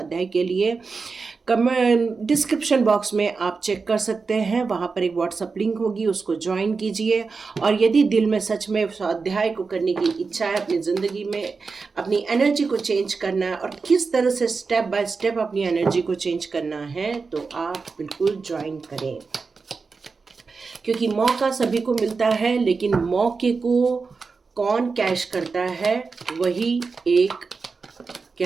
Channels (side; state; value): left; quieter; 4.6 dB